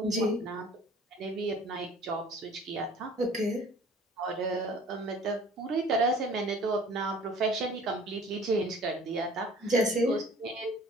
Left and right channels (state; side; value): normal; both; correlation 0.49